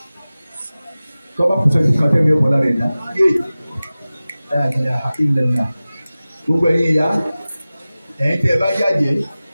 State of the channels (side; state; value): both; inverted; correlation -0.97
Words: Kọ́ba kùsẹ̀ ní kan tẹ́mi ọ̀pọ̀ lára rẹ̀ dá. Gbogbo ẹ̀yin ìyá ẹ̀yin tẹ́ ẹ bá yàjẹ́